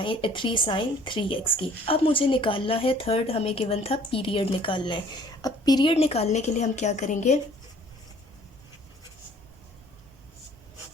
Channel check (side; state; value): both; normal; correlation 0.55